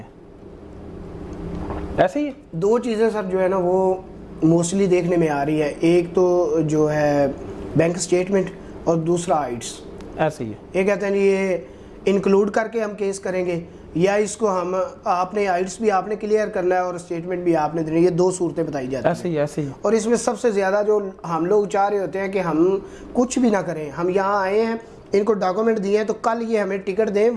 ऐसे ही दो चीज़ें सर जो है ना वो मोस्टली देखने में आ रही है, एक तो जो है बैंक स्टेटमेंट और दूसरा आइट्स। ऐसे ही है, ये कहते हैं ये इंक्लूड करके हम केस करेंगे या इसको हम आपने आइट्स भी आपने क्लियर करना है और स्टेटमेंट भी आपने देनी है। ये दो सूरतें बताई जाती हैं। ऐसे ही। और इसमें सबसे ज़्यादा जो हम लोग चाह रहे होते हैं कि हम कुछ भी ना करें, हम यहाँ आए हैं, इनको डॉक्यूमेंट दिए हैं तो कल ये हमें टिकट दें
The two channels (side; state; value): both; identical; correlation 1.00